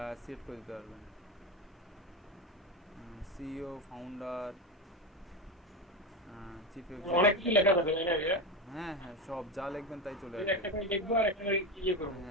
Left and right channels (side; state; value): both; normal; correlation 0.17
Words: সেট করে দিতে পারবেন। সিইও, ফাউন্ডার, চিফ অনেক কিছু লেখা থাকে, তাই না? হ্যাঁ হ্যাঁ, সব যা লিখবেন তাই চলে আসবে। একটা করে লিখবো আর একটা করে ইয়ে করব।